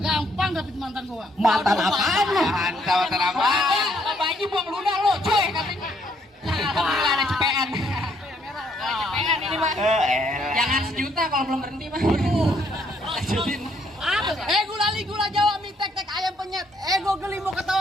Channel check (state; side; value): normal; both; correlation 0.70